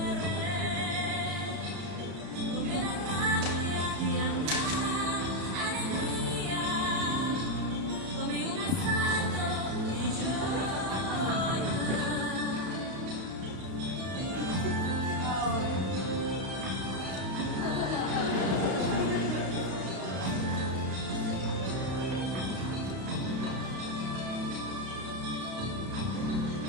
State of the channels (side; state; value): left; late; 32 ms